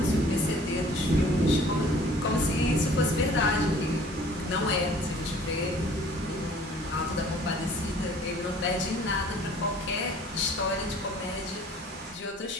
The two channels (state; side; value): normal; both; correlation 0.52